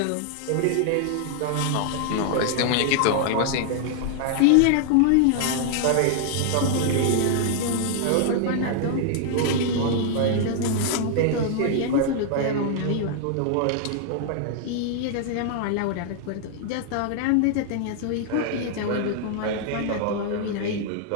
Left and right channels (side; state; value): both; different; correlation 0.00